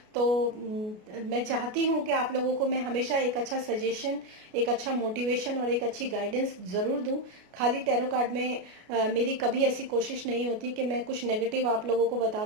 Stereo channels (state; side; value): late; left; 33 ms